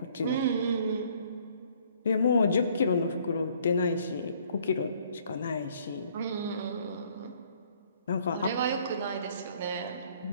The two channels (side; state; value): both; inverted; correlation -0.60